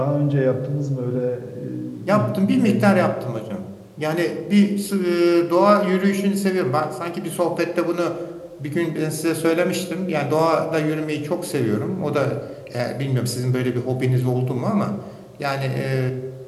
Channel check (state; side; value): identical; both; correlation 1.00